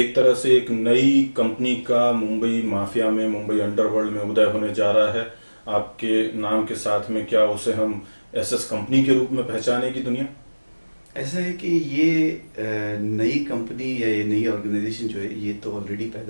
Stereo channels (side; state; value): both; inverted; correlation -1.00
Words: तरह से एक नई कंपनी का मुंबई माफिया में, मुंबई अंडरवर्ल्ड में उदय होने जा रहा है। आपके नाम के साथ में क्या उसे हम एसएस कंपनी के रूप में पहचानेगी दुनिया? ऐसा है कि ये नई कंपनी या ये नई ऑर्गेनाइजेशन जो है ये तो ऑलरेडी